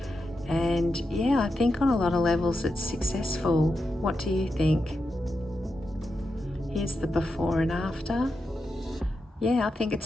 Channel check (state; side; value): normal; both; correlation 0.88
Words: And yeah, I think on a lot of levels it's successful. What do you think? Here's the before and after. Yeah, I think